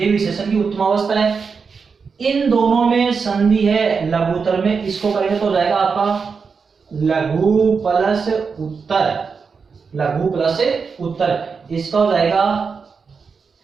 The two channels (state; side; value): quieter; left; 5.4 dB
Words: विशेषण की उत्तम अवस्था है। इन दोनों में संधि है लघुत्तर में, इसको करेंगे तो जाएगा आपका लघु प्लस उत्तर, लघु प्लस उत्तर, इसका हो जाएगा